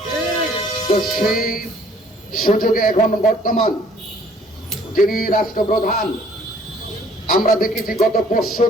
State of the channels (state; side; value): normal; both; correlation 0.58